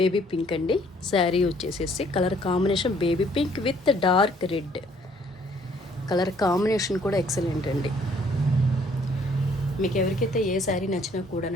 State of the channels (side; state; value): both; normal; correlation 0.62